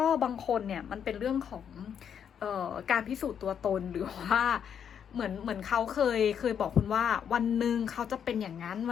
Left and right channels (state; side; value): quieter; right; 8.2 dB